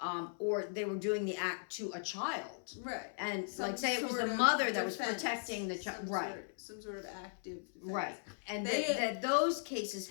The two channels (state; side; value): silent; right; 53 dB below the other